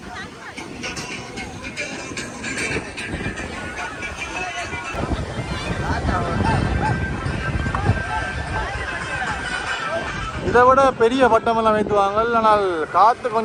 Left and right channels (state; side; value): identical; both; correlation 1.00